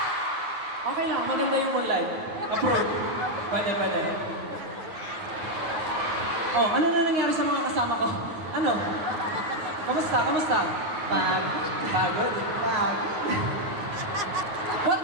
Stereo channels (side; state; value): left; late; 9.5 ms